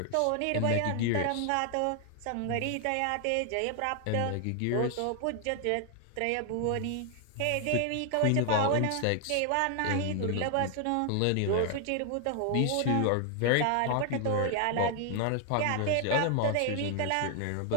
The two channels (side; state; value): both; different; correlation 0.00